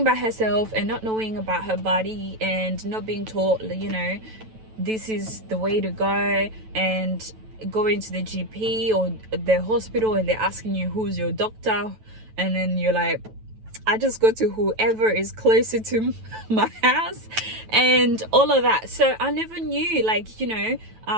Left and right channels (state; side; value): late; left; 9.1 ms